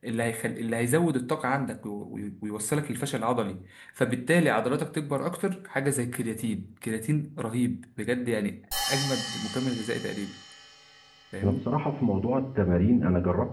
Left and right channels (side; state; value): both; identical; correlation 1.00